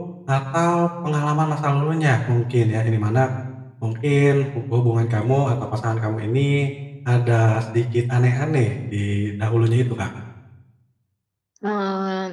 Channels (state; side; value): identical; both; correlation 1.00